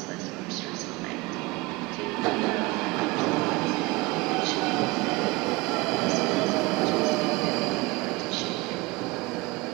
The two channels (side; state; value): left; quieter; 22.9 dB